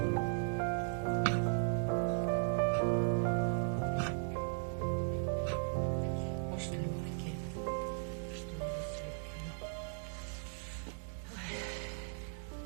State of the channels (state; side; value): silent; left; digital silence